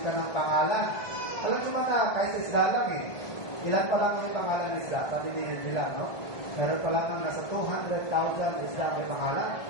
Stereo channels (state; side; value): late; right; 1.5 ms